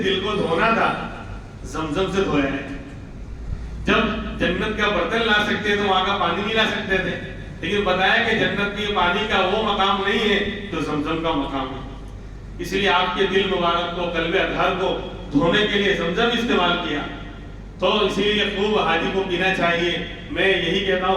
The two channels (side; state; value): both; identical; correlation 1.00